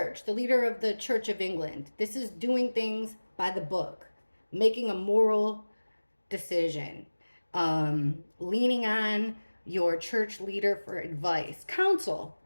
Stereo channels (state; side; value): inverted; both; correlation -1.00